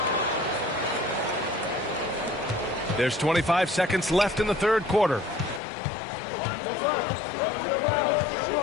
There's 25 seconds left in the third quarter.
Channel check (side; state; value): right; drops out; at 5.6 s